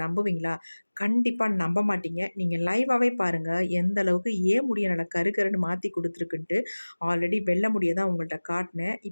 நம்புவீங்களா? கண்டிப்பா நம்ப மாட்டீங்க. நீங்க லைவாவே பாருங்க. எந்த அளவுக்கு ஏன் முடிய நல்லா கருன்னு மாத்தி குடுத்துருக்குன்ட்டு. ஆல்ரெடி வெள்ள முடிய தான் உங்கள்ட்ட காட்டுனேன்.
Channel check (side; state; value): both; inverted; correlation -1.00